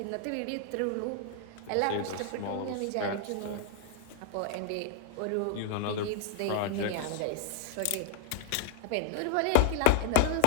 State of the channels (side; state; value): both; different; correlation 0.00